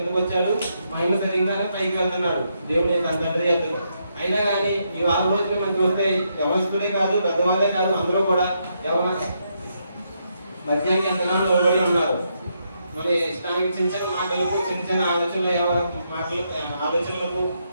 వచ్చాడు, మహిమ శరీరంగానే పైకి వెళ్తున్నాడు దేవుడు తన తండ్రి ఎద్దుకు. అయినా కానీ ఈ 4 రోజులు మనకి వస్తే యవనస్తులే కాదు, పెద్దవాళ్ళే కాదు, అందరూ కూడా మధ్యాహ్నం ఎంతగానో లోబడి ఉన్నారు. మన ఇష్టానికి చిన్న చిన్న మాటలకు, చిన్న చిన్న ఆలోచనలకు,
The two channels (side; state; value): both; inverted; correlation -0.79